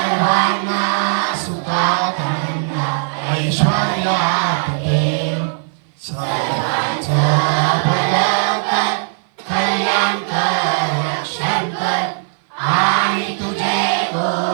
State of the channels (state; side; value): silent; left; 57 dB below the other